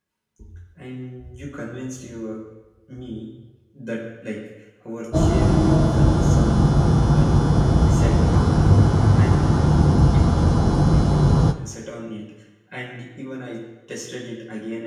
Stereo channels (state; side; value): identical; both; correlation 1.00